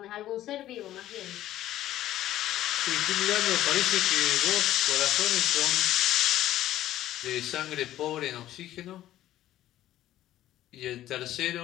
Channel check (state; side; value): quieter; right; 13.5 dB